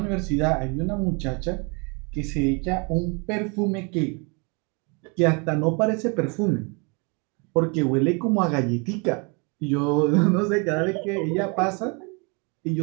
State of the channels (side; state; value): left; quieter; 32.6 dB